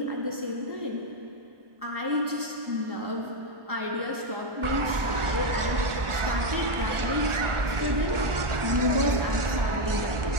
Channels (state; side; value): late; left; 1.4 ms